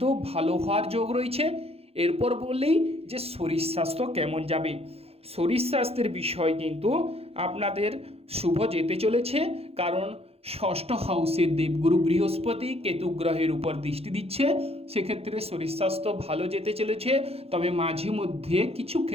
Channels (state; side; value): late; left; 0.29 ms